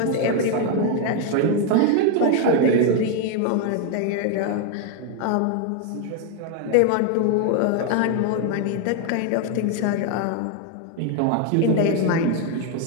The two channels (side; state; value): both; different; correlation 0.01